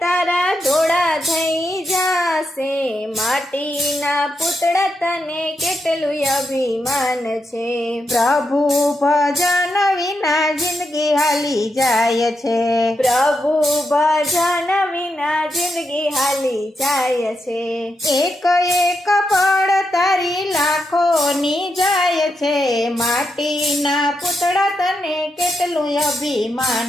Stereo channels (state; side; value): normal; both; correlation 0.84